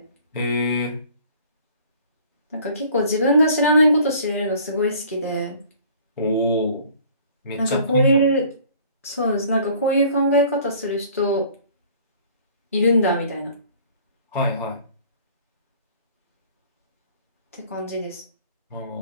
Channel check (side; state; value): both; inverted; correlation -0.52